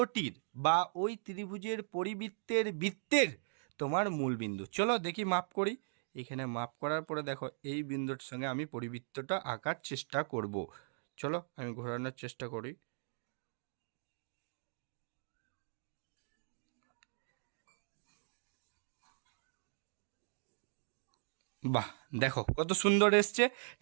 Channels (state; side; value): silent; left; digital silence